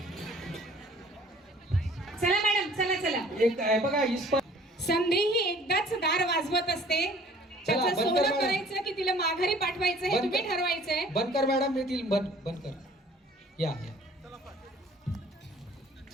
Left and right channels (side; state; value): both; normal; correlation 0.53